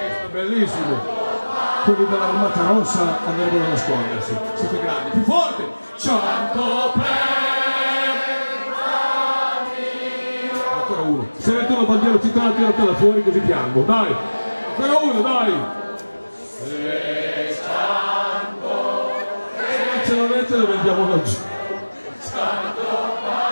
Bellissimo. Quelli dell'Armata Rossa andrebbero a nascondersi. Siete grandi, più forte. Cianto per ancora uno. Se metto la bandiera cittadina, tiratela fuori così piango. Dai, ancora uno, dai. Se non ce l'avete lo vendiamo laggiù.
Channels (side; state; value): both; inverted; correlation -1.00